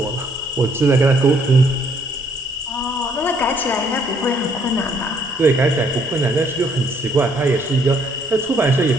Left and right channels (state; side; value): normal; both; correlation 0.66